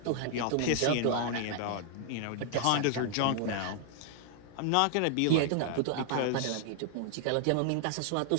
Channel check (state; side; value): different; both; correlation 0.00